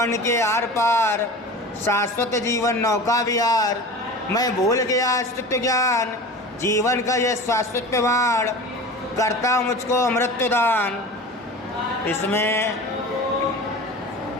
के आर पार, शाश्वत जीवन नौका विहार, मैं भूल गया अस्तित्व ज्ञान, जीवन का यह शाश्वत प्रमाण, करता मुझको अमृत दान। इसमें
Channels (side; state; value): both; normal; correlation 0.35